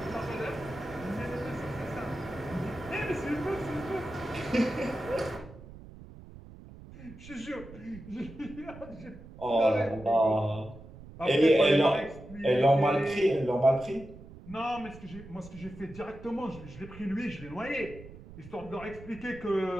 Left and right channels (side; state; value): right; noise; rumble, 17 dB below the sound